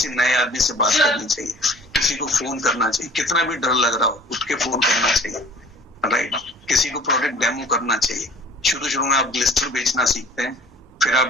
नए आदमी से बात करनी चाहिए, किसी को फोन करना चाहिए, कितना भी डर लग रहा हो उठ के फोन करना चाहिए, राइट। किसी को प्रोडक्ट डेमो करना चाहिए। शुरू में आप ग्लिस्टर बेचना सीखते हैं, फिर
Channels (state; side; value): normal; both; correlation 0.48